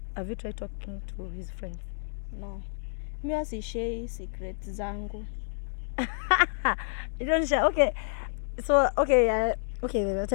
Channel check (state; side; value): silent; right; 58 dB below the other